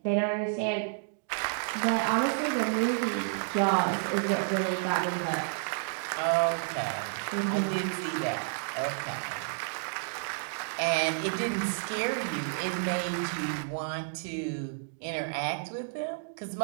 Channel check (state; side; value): silent; left; digital silence